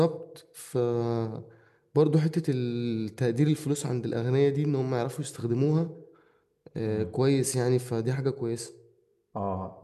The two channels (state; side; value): identical; both; correlation 1.00